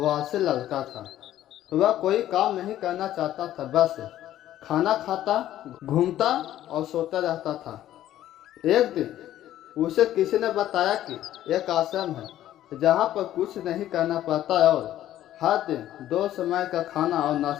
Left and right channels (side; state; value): right; quieter; 12.8 dB